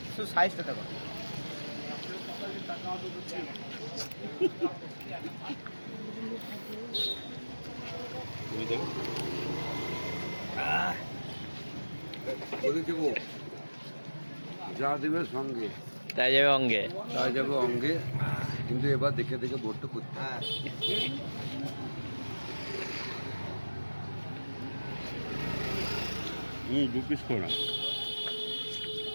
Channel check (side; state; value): both; inverted; correlation -1.00